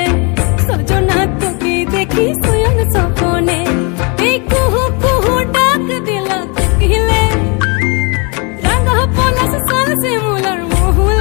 सजना তোকে দেখি শয়ন সপনে এই কুহু কুহু ডাক দিলা তকিলে রঙ পলাশ সাল সে মুলার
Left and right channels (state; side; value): quieter; right; 32.3 dB